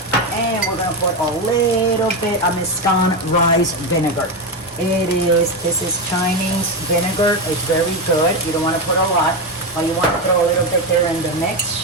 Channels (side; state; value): both; normal; correlation 0.12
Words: And we're gonna put a little bit of Mescan rice vinegar. This is Chinese vinegar. It's very good. You don't wanna put a lot, but you wanna throw a little bit there in the